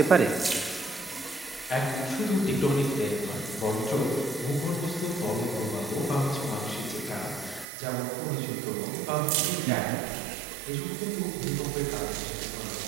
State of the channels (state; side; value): drops out; left; at 7.7 s